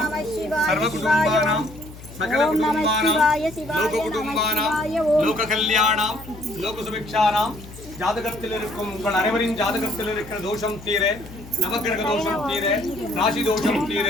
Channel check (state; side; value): noise; left; hum, 17 dB below the sound